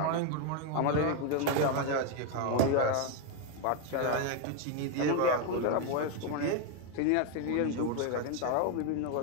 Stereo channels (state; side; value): different; both; correlation 0.01